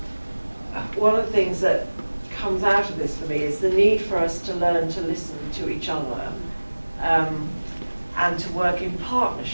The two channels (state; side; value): inverted; both; correlation -1.00